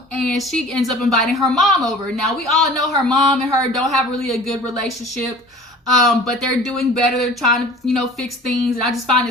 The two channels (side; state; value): both; normal; correlation 0.44